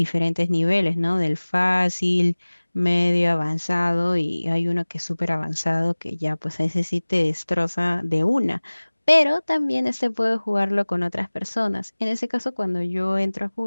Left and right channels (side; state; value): both; inverted; correlation -1.00